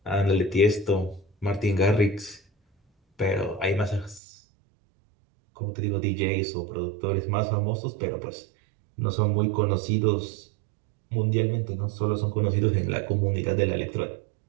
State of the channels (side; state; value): left; drops out; at 4.2 s